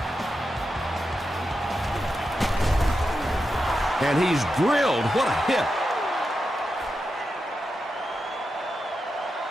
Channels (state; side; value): normal; both; correlation 0.88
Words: And he's drilled. What a hit.